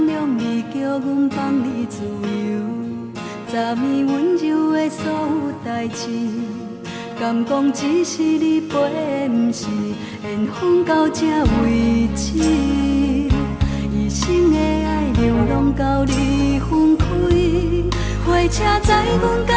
谅你，叫阮放你自由。昨暝温柔的所有代志，敢讲只是你陪，不是缘分到这为止。一生的爱流浪到你分开，火车载阮到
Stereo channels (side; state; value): both; identical; correlation 1.00